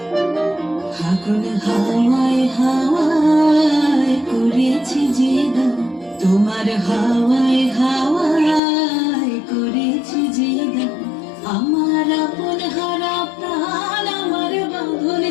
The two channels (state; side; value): drops out; right; at 8.6 s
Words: ফাগুন হাওয়ায় হাওয়ায় করেছি যে গান, তোমার হাওয়ায় হাওয়ায় করেছি যে গান। আমার আপন হারা প্রাণ, আমার বাঁধন